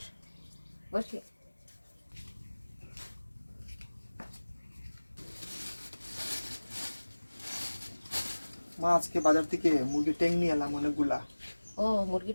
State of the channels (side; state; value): both; inverted; correlation -1.00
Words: বস। মা আজকে বাজার থেকে মুরগির ট্যাং নিয়ে এলাম অনেকগুলা। ও মুরগি